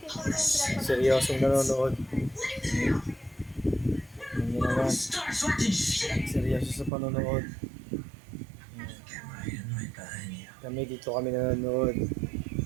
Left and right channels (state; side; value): drops out; left; at 6.9 s